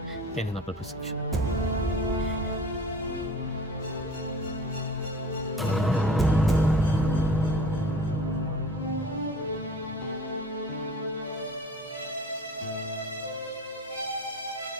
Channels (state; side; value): normal; both; correlation 0.44